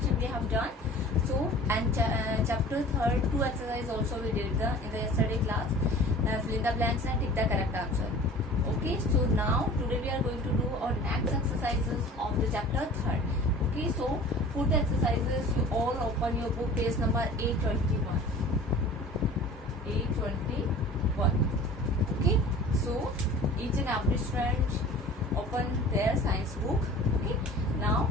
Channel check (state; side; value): normal; both; correlation 0.43